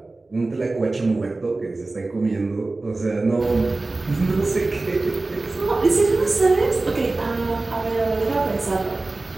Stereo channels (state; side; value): quieter; left; 3.3 dB